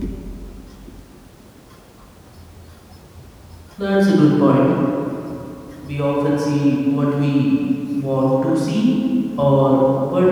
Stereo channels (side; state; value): both; identical; correlation 1.00